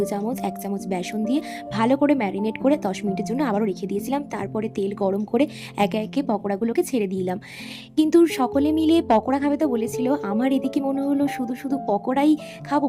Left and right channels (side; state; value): both; identical; correlation 1.00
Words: চামচ, 1 চামচ বেসন দিয়ে ভালো করে ম্যারিনেট করে 10 মিনিটের জন্য আবারও রেখে দিয়েছিলাম। তারপরে তেল গরম করে একে একে পকোড়াগুলোকে ছেড়ে দিলাম। কিন্তু সকলে মিলে পকোড়া খাবে তো বলেছিল, আমার এদিকে মনে হলো শুধু শুধু পকোড়াই খাবো।